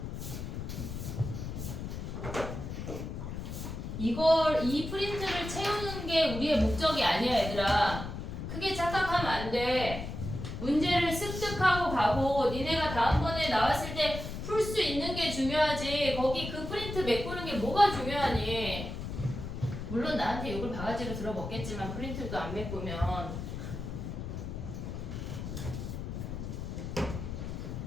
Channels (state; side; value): noise; left; rumble, 6 dB below the sound